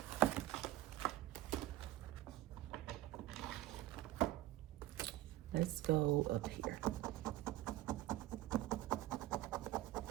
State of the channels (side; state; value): left; quieter; 15.7 dB